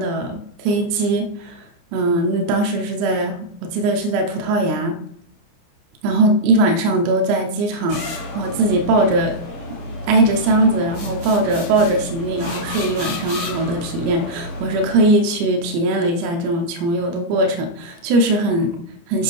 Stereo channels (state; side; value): late; left; 29 ms